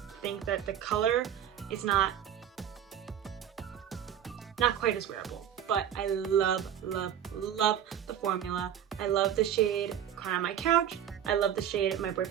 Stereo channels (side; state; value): left; quieter; 9.8 dB